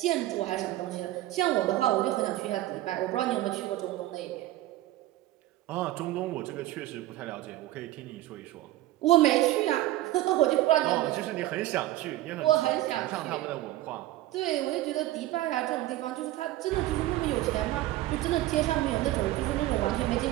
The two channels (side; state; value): left; quieter; 15.6 dB